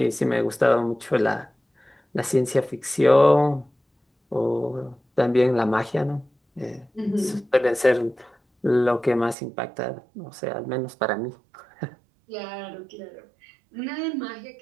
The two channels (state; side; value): drops out; left; at 9.3 s